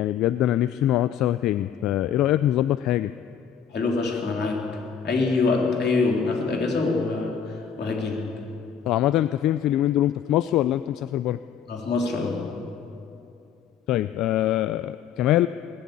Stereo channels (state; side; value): quieter; right; 7.9 dB